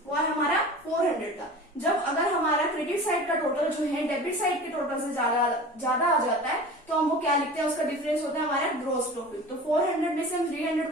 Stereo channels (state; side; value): normal; both; correlation 0.37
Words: वो है हमारा 400 का। जब अगर हमारा क्रेडिट साइड का टोटल जो है डेबिट साइड के टोटल से ज्यादा आ जाता है तो हम वो क्या लिखते हैं, उसका डिफरेंस होता है हमारा ग्रॉस प्रॉफिट। तो 400 में से हम 300